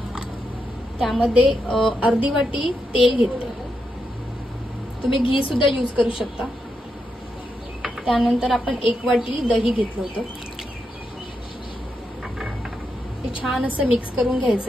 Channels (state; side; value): normal; both; correlation 0.84